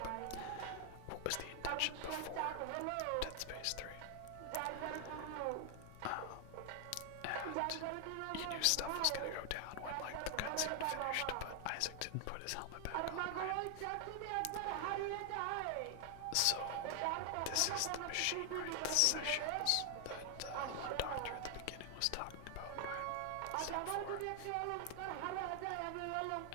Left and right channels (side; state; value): both; different; correlation 0.00